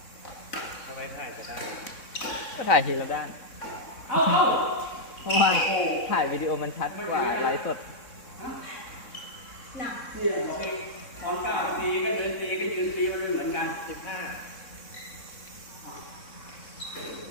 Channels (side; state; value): right; late; 3.6 ms